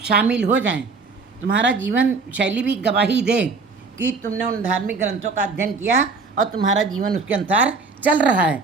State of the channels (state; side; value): quieter; left; 4.3 dB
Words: शामिल हो जाएं। तुम्हारा जीवन शैली भी गवाही दे कि तुमने उन धार्मिक ग्रंथों का अध्ययन किया और तुम्हारा जीवन उसके अनुसार चल रहा है।